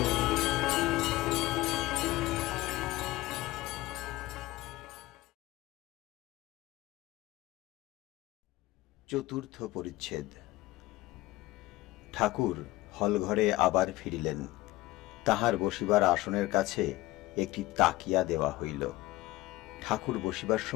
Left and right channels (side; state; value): right; quieter; 18.4 dB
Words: চতুর্থ পরিচ্ছেদ। ঠাকুর হলঘরে আবার ফিরিলেন। তাহার বসিবার আসনের কাছে একটি তাকিয়া দেওয়া হইল। ঠাকুর বসিবার